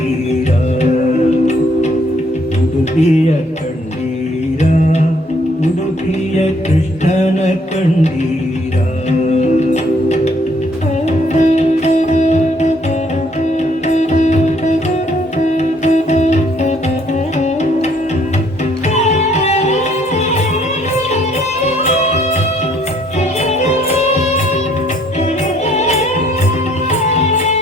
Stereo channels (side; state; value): both; normal; correlation 0.65